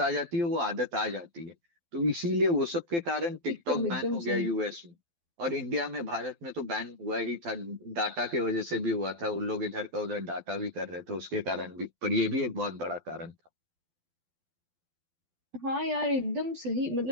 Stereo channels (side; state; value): left; late; 12 ms